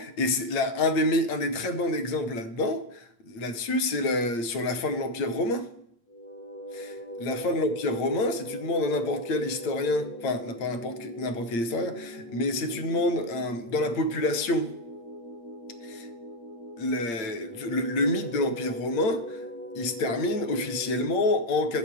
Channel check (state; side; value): late; right; 8.6 ms